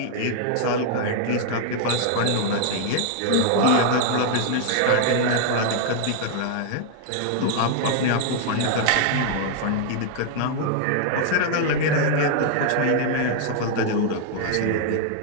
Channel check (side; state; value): both; different; correlation 0.00